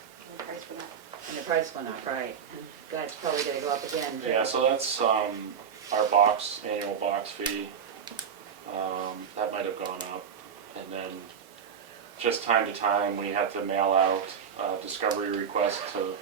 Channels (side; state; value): left; quieter; 7.3 dB